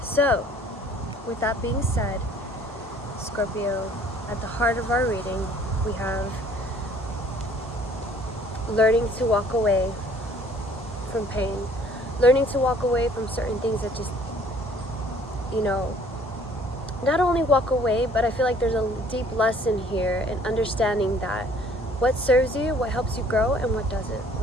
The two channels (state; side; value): normal; both; correlation 0.57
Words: so with that being said, Scorpio, at the heart of our reading, we have learning to walk away from pain, learning to walk away from certain things that just you know, not only walk away, but I feel like there's a deep lesson here in understanding that what serves you, what helps you grow, and what doesn't,